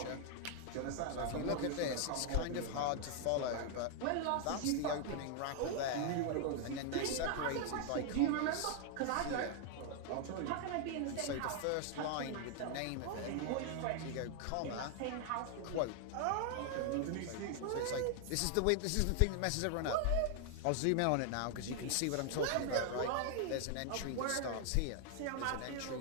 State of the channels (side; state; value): both; different; correlation 0.00